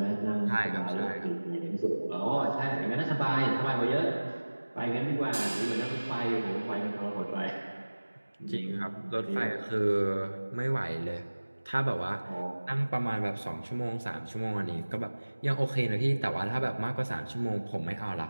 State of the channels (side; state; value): both; inverted; correlation -1.00